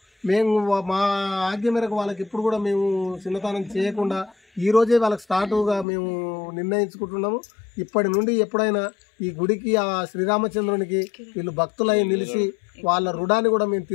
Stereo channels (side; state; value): right; drops out; at 5.9 s